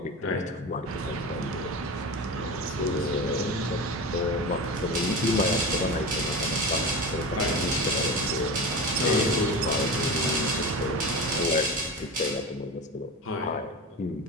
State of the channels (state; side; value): normal; both; correlation 0.27